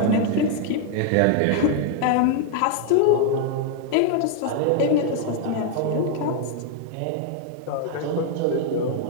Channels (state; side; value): different; both; correlation 0.00